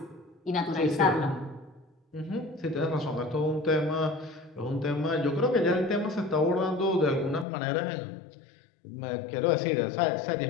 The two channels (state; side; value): drops out; right; at 7.5 s